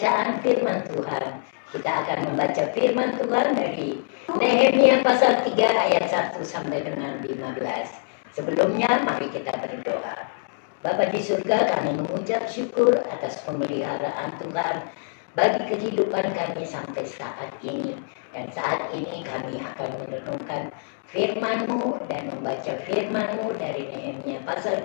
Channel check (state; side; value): silent; right; digital silence